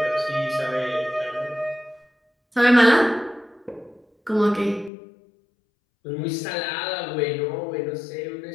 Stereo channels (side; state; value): right; drops out; at 4.9 s